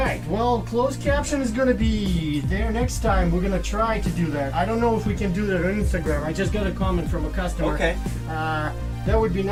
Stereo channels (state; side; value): identical; both; correlation 1.00